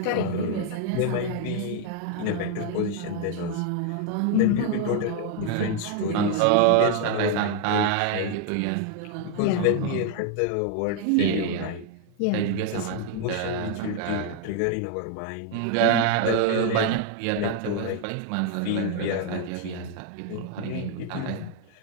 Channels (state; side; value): different; both; correlation 0.00